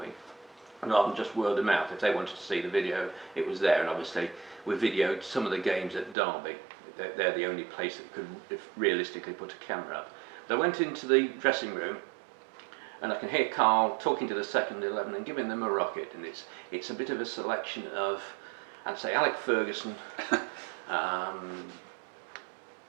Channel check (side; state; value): left; drops out; at 6.2 s